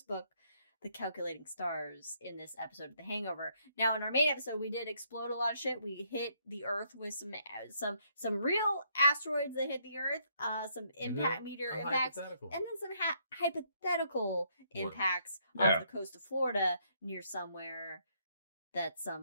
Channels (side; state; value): both; inverted; correlation -0.71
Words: book, The Calculating Stars, in this episode of The Hangover. Now, in our main episode, we did explode a lot of shit. We hit the Earth with some real asteroids that hit the Earth, some meteor impacts, and then some hypothetical impacts off the coast of Florida near somewhere that